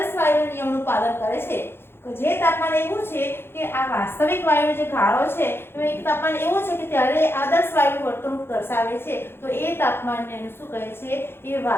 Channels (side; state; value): right; late; 0.11 ms